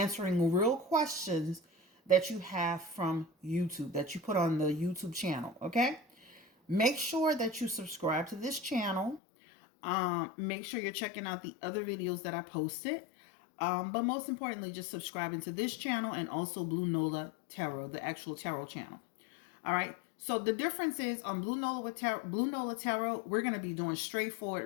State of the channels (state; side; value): drops out; right; at 9.2 s